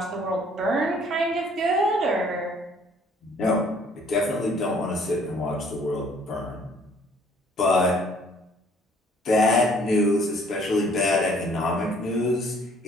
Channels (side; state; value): both; normal; correlation 0.59